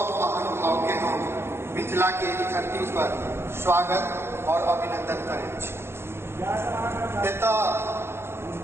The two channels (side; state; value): left; late; 0.12 ms